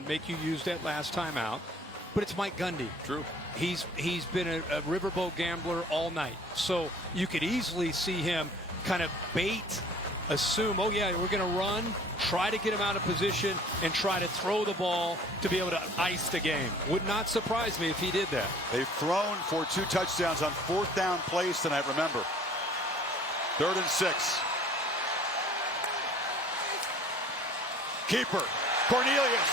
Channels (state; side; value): normal; both; correlation 0.51